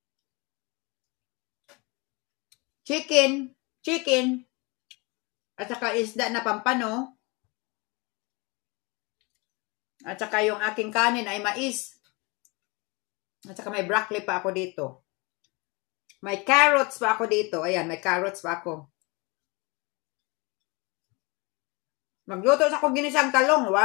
chicken, at saka isda na pampano, at saka yung aking kanin ay mais. At saka may broccoli pa ako dito. May carrots pa ako dito. Ayan, may carrots pa ako. Magluto sa akong ginisang talong.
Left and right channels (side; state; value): right; quieter; 27.8 dB